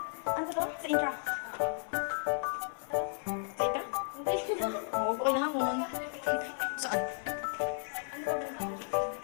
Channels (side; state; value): right; silent; 55 dB below the other